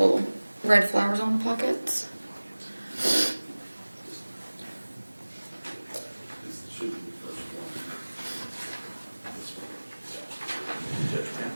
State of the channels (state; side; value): inverted; both; correlation -1.00